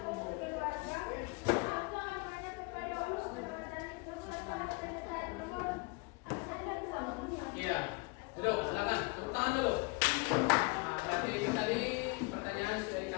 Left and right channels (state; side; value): quieter; right; 29.1 dB